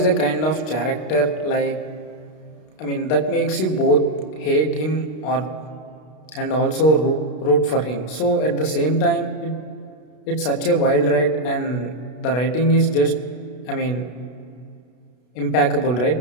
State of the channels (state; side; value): late; right; 32 ms